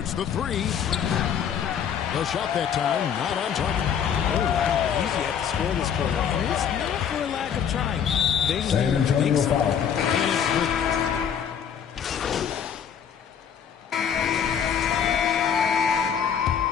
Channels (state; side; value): quieter; right; 8.1 dB